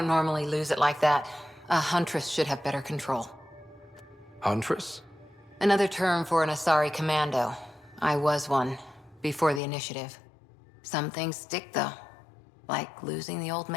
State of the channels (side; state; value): right; drops out; at 9.6 s